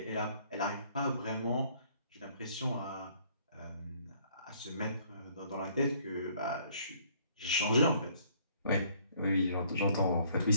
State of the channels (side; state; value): both; inverted; correlation -0.62